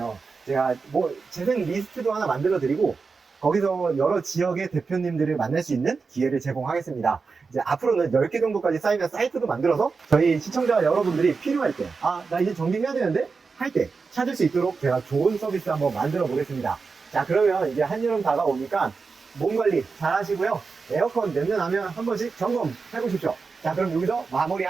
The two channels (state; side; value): quieter; left; 4.7 dB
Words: 제가 뭐 재생 리스트도 하나 만들어 드리고 거기서 여러 지역의 대표님들을 만날 수 있는 기회를 제공하겠습니다. 이제 앞으로는 10개 정도까지 쌓이면 사이트도 만들어서 저희 시청자 여러분들이 필요할 때 나 이제 정비해야 되는데 할 때 찾을 수 있도록 제가 좋은 서비스 한번 만들어 보겠습니다. 자, 그러면 이제 한여름 다가오니까 몸 관리 잘 하시고요. 에어컨 냄새 나면 한 번씩 점검해 보십시오. 자, 그럼 여기서 마무리